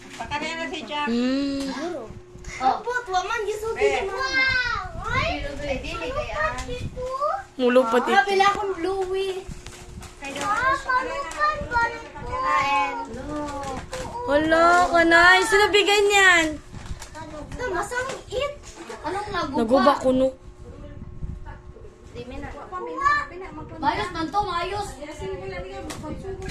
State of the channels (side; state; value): both; identical; correlation 1.00